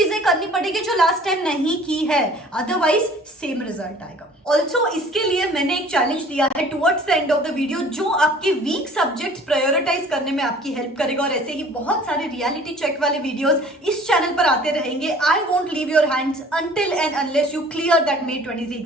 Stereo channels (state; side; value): normal; both; correlation 0.50